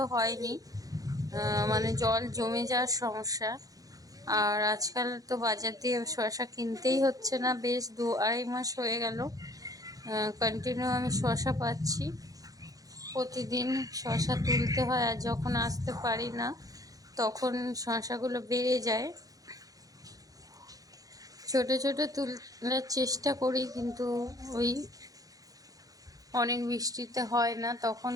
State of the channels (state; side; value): late; left; 0.17 ms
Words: হয়নি, মানে জল জমে যাওয়ার সমস্যা। আর আজকাল তো বাজার দিয়ে শসা কিনতেই হচ্ছে না, বেশ 2-2.5 মাস হয়ে গেল কন্টিনিউ আমি শসা পাচ্ছি। প্রতিদিন শসা তুলতে হয়, আর যখন আসতে পারি না তখন শসাগুলো বেড়ে যায়। ছোট ছোট তোলার চেষ্টা করি, কিন্তু ওই অনেক বৃষ্টিতে হয় না, তখন